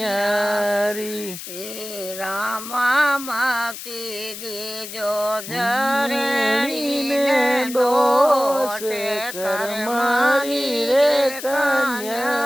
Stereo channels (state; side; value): noise; left; hiss, 10 dB below the sound